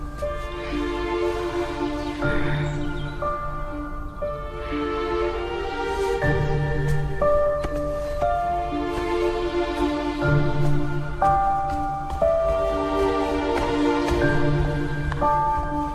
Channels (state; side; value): identical; both; correlation 1.00